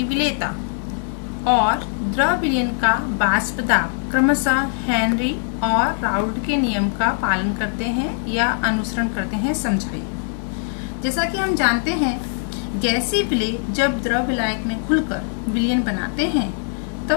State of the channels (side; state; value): right; silent; 65 dB below the other